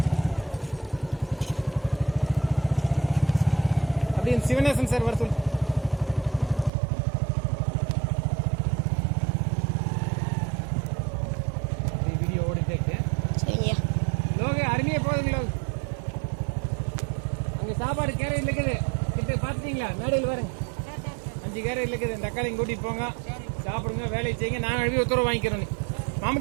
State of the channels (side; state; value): left; drops out; at 6.7 s